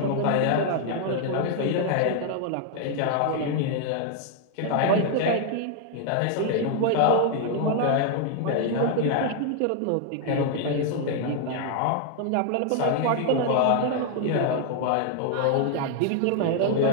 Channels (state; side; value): different; both; correlation 0.00